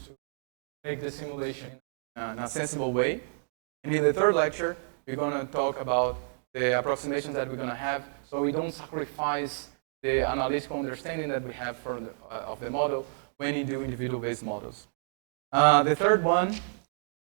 to make the simulation in a sensible way? And in the third lecture, we're going to talk about the approximations that we're going to have, so we don't sacrifice the analytical understanding that we have of the model when you do individual-based models. The third one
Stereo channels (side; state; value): left; silent; digital silence